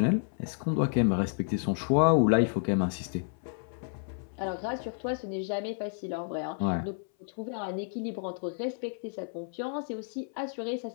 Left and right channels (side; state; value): right; silent; 57 dB below the other